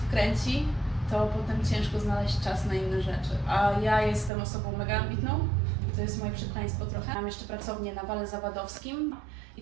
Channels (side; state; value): left; drops out; at 4.3 s